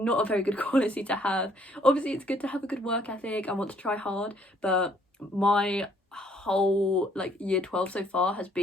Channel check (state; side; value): normal; both; correlation 0.64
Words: a very good quality to have. Obviously it's good to have a good work ethic. I want to try hard, but my whole like year 12 so far has